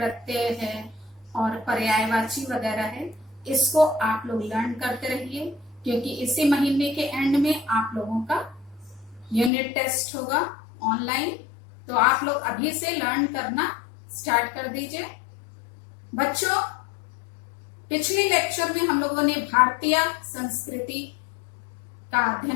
है और पर्यायवाची वगैरह है, इसको आप लोग लर्न करते रहिए, क्योंकि इसी महीने के एंड में आप लोगों का यूनिट टेस्ट होगा ऑनलाइन। तो आप लोग अभी से लर्न करना स्टार्ट कर दीजिए। बच्चों, पिछले लेक्चर में हम लोगों ने भारतीय संस्कृति का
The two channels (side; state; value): right; drops out; at 9.5 s